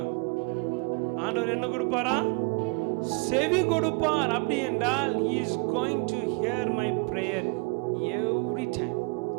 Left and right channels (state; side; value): quieter; left; 30.1 dB